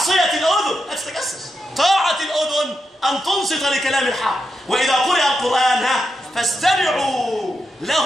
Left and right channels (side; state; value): both; normal; correlation 0.85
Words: الأذن لا تتجسس، طاعة الأذن أن تنصت لكلام الحق، وإذا قرئ القرآن فاستمعوا